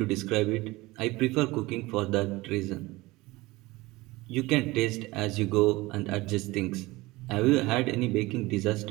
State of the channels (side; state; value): left; quieter; 20.7 dB